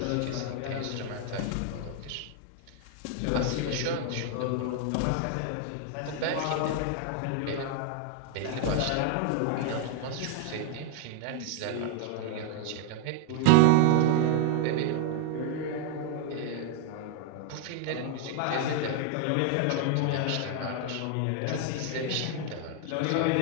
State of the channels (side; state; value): both; different; correlation 0.00